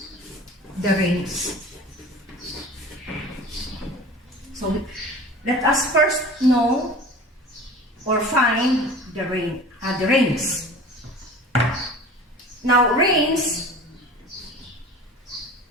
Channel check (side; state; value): both; normal; correlation 0.40